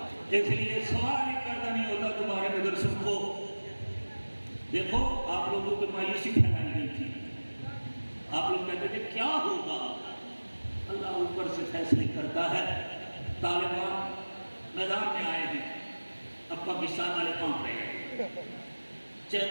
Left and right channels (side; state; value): both; inverted; correlation -1.00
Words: اس لیے سوال ہی پیدا نہیں ہوتا تمہارے مدرسوں کو. دیکھو آپ لوگوں کو مایوسی پھیلائی گئی تھی، آپ لوگ کہتے تھے کیا ہوگا. اللہ اوپر سے فیصلے کرتا ہے. طالبان میدان میں آئے ہیں، اب پاکستان والے کام رہے ہیں،